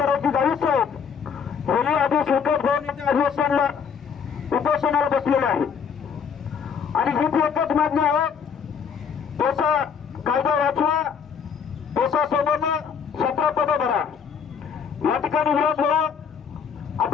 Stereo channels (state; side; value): quieter; right; 6.8 dB